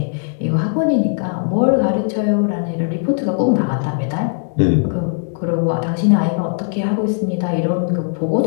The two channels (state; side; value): silent; right; digital silence